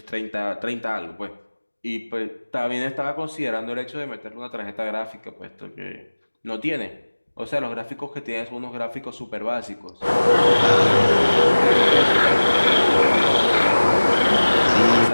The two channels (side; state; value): both; inverted; correlation -1.00